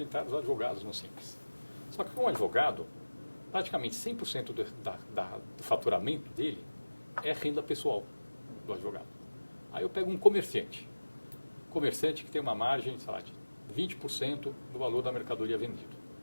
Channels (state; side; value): inverted; both; correlation -1.00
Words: entraram os advogados no Simples. Só que um advogado, praticamente 100% do faturamento dele é renda pessoal do advogado. Aí eu pego um comerciante que tem uma margem, sei lá, de 20% do valor da mercadoria vendida.